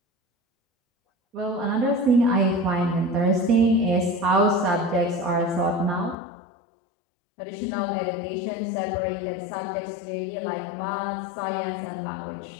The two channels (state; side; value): drops out; right; at 6.2 s